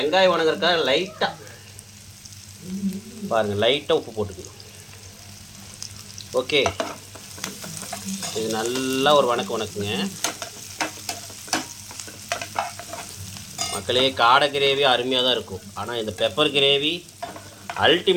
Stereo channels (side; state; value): both; identical; correlation 1.00